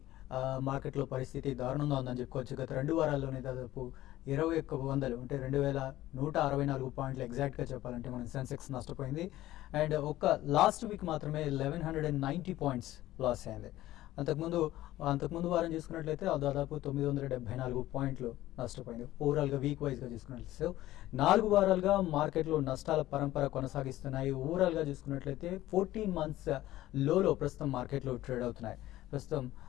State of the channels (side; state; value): right; quieter; 15.3 dB